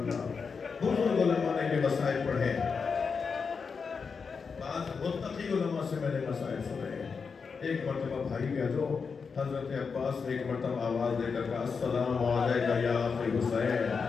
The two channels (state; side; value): quieter; right; 5.4 dB